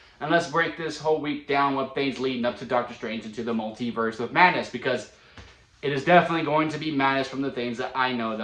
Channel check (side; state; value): both; identical; correlation 1.00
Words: and let's break this whole week down with things leading up to Doctor Strange into the multiverse of madness, because it is definitely going to be madness from the things that I know that